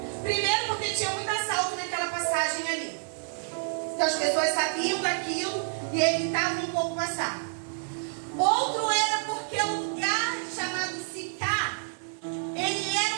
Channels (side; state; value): left; silent; digital silence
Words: Primeiro porque tinha muito assalto naquela passagem ali. Então as pessoas sabiam daquilo e evitavam um pouco passar. Outro era porque o lugar chamado Sicar, ele era